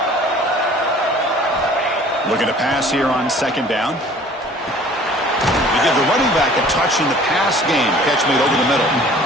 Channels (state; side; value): normal; both; correlation 0.50